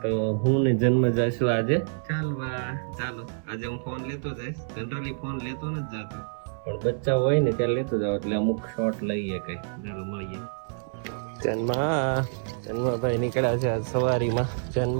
તો હું ને જન્મ જશું આજે ચાલવા. ચાલો આજે હું ફોન લેતો જઈશ. જનરલી ફોન લેતો નથી જતો પણ બચ્ચા હોય ને ત્યારે લેતો જાવ એટલે અમુક શોટ લઈએ કઈ. ચાલો મળીએ. જન્મભાઈ નીકળ્યા છે આજ સવારીમાં. જન્મ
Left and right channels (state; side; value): silent; left; 60 dB below the other